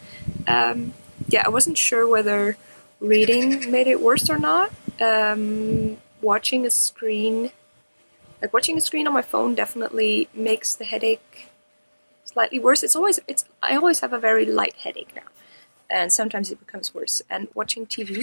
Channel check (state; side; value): inverted; both; correlation -1.00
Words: Yeah, I wasn't sure whether reading made it worse or not. Watching a screen on my phone definitely makes the headache slightly worse. I always have a very light headache now, and sometimes it becomes worse. And watching